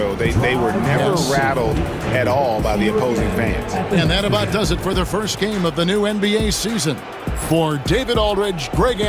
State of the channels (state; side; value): identical; both; correlation 1.00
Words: They were never rattled at all by the opposing fans. And that about does it for the first game of the new NBA season. For David Aldridge, Greg